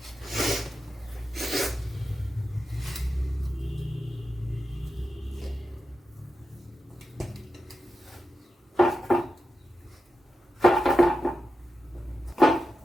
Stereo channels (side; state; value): both; normal; correlation 0.90